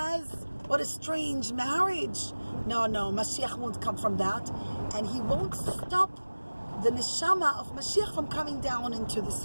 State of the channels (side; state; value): both; inverted; correlation -1.00